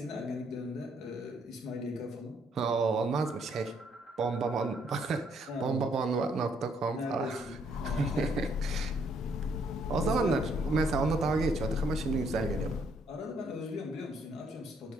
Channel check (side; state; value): both; normal; correlation 0.69